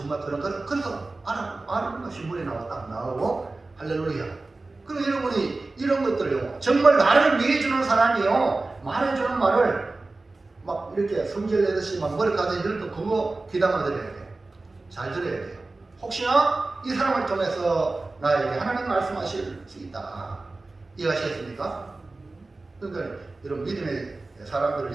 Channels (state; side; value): quieter; left; 3.3 dB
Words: 그런 걸 그래서 아는 것이 물에 나오고 할렐루야. 그럼 여러분이 이런 것들요, 정말 나를 위해 주는 사람이요, 말해주는 말을 막 이렇게 성질 내듯이 막 머리카락에 이럴 때 그거 귀담아 들어야 돼요. 잘 들어야 돼요. 혹시나 이 사람을 통해서 나에게 하나님 말씀하실 수 있다. 이해하시겠습니까? 그러니까 여러분 믿음의 사람들을